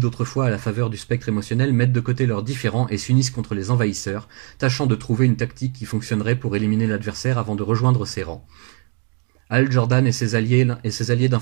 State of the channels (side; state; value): left; quieter; 34.3 dB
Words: à la faveur du spectre émotionnel mettent de côté leurs différends et s'unissent contre les envahisseurs, tâchant de trouver une tactique qui fonctionnerait pour éliminer l'adversaire avant de rejoindre ses rangs. Hal Jordan et ses alliés